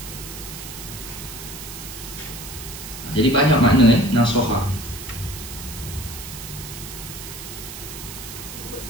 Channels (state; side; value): noise; right; hiss, 11 dB below the sound